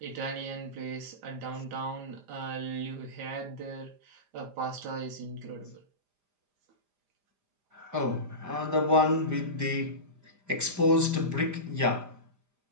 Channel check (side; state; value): left; late; 5.0 ms